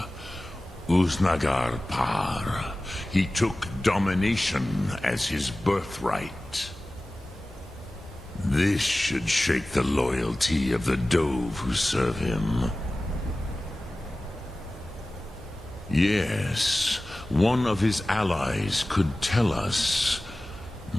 Uznagar Par. He took domination as his birthright. This should shake the loyalty of the Dove who serve him. Yes, one of his allies could tell us.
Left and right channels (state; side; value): normal; both; correlation 0.97